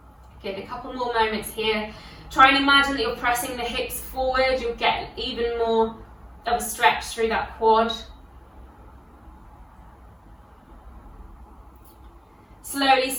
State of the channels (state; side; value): identical; both; correlation 1.00